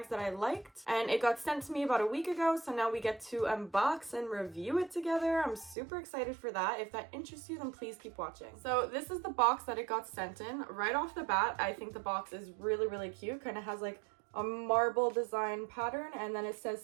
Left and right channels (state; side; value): drops out; left; at 5.8 s